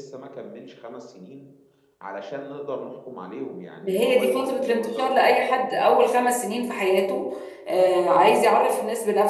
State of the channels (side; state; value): both; identical; correlation 1.00